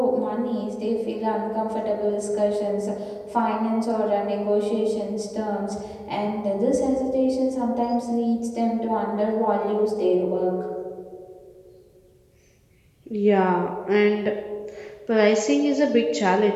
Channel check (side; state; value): both; identical; correlation 1.00